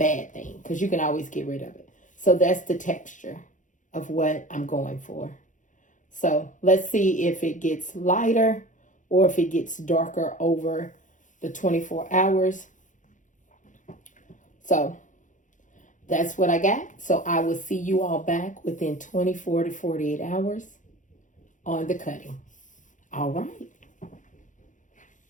thing, because you can always get rid of it. So that's the texture of what I'm going for. So let's see if it gets lighter or if it gets darker over the 24 hours. So that's what I got. So I will see you all back within 24 to 48 hours on the cutting. All right.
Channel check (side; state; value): right; late; 0.37 ms